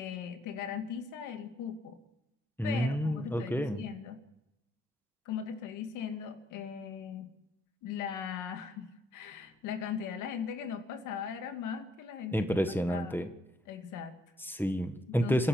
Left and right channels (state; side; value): normal; both; correlation 0.71